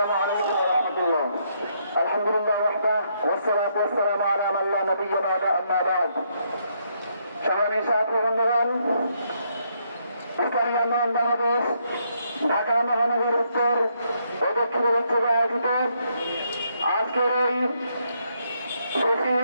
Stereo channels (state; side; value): inverted; both; correlation -0.75